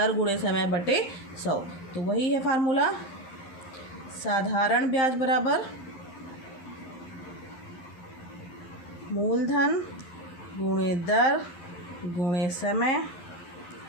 गुणे समय बटे 100। तो वही है फार्मूला, साधारण ब्याज बराबर मूलधन गुणे दर गुणे समय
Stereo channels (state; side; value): late; right; 11 ms